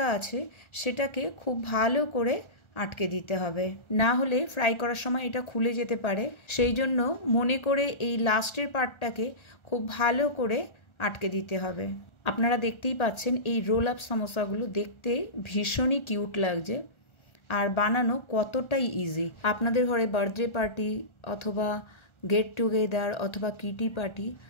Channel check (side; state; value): right; late; 1.4 ms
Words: আছে সেটাকে খুব ভালো করে আটকে দিতে হবে, না হলে ফ্রাই করার সময় এটা খুলে যেতে পারে। সেই জন্য মনে করে এই লাস্টের পার্টটাকে খুব ভালো করে আটকে দিতে হবে। আপনারা দেখতেই পাচ্ছেন এই রোল আপ সামোসাগুলো দেখতে ভীষণই কিউট লাগছে আর বানানো কতটাই ইজি। আপনাদের ঘরে বার্থডে পার্টি অথবা গেট টুগেদার অথবা কিটি পার্টি